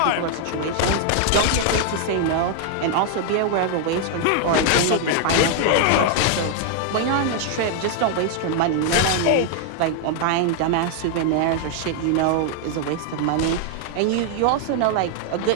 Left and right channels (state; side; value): different; both; correlation 0.00